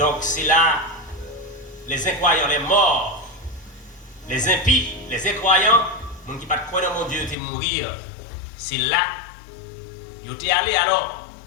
c'est là les incroyants, les morts, les impies, les incroyants, ceux qui ne croient pas dans mon Dieu, ils vont mourir. C'est là, ils étaient allés alors,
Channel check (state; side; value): drops out; right; at 7.4 s